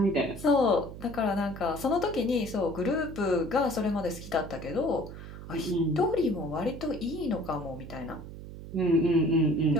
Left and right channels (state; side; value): noise; right; hum, 12 dB below the sound